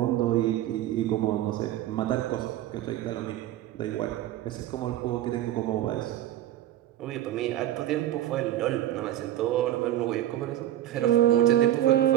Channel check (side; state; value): left; quieter; 13.0 dB